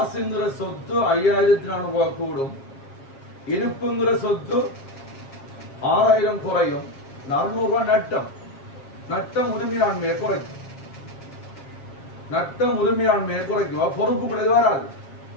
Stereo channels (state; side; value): late; right; 7.4 ms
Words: சொத்து 5400 ரூபாய் கூடும். இருப்புங்கிற சொத்து 6000 குறையும். 400 ரூபாய் நட்டம். நட்டம் உரிமையாண்மையை குறைக்கும். நட்டம் உரிமையாண்மையை குறைக்கும். பொறுப்புக்குள்ள வராது.